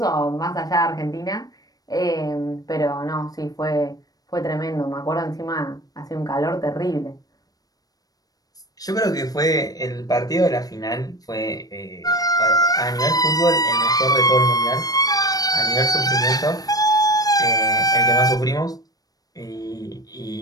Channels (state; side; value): late; right; 0.18 ms